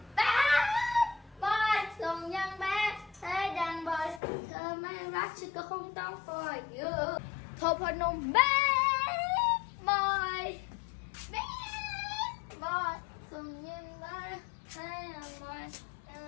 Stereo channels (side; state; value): right; drops out; at 4.2 s